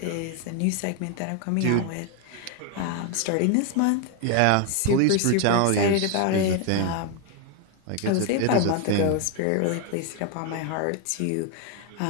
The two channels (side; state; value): both; different; correlation 0.01